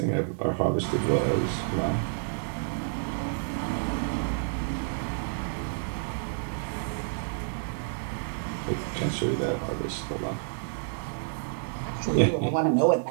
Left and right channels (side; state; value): left; silent; digital silence